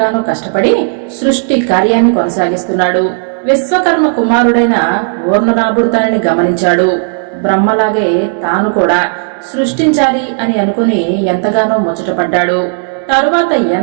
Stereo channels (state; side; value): silent; left; digital silence